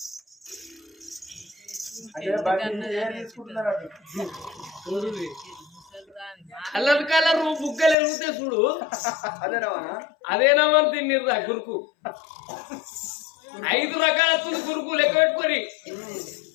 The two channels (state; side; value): drops out; right; at 8.0 s